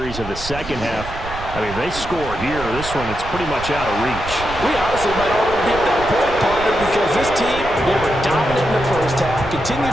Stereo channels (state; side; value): noise; right; rumble, 11 dB below the sound